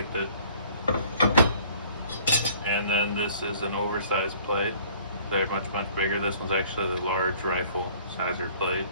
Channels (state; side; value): inverted; both; correlation -0.55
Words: it. And then this is an oversized plate. They're much bigger. This one's actually the large rifle sizer plate.